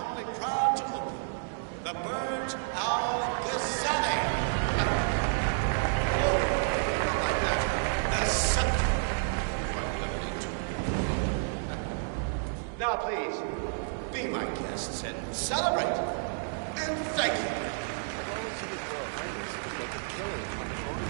proud to open the Burj Al-Ghazali. Oh, not like that. The scepter. Now, please, be my guests and celebrate. And thank you.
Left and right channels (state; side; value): silent; left; digital silence